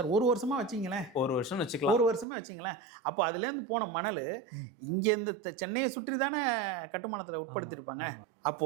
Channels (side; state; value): left; drops out; at 2.2 s